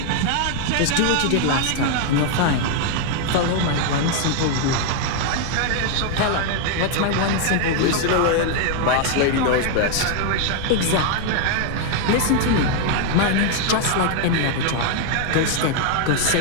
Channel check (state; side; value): different; both; correlation 0.00